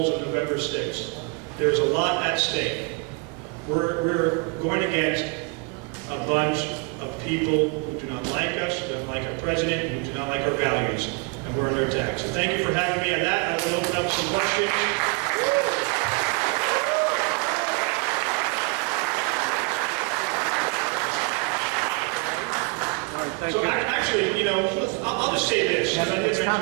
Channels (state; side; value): quieter; left; 30.0 dB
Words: on November 6th. There's a lot at stake. We're going against a bunch of people who do not like us, who don't like our president, who do not like our values, and we're under attack. So thank you for having me on that. I will open up some questions. So actually, you know, I'll just say this, because I did mention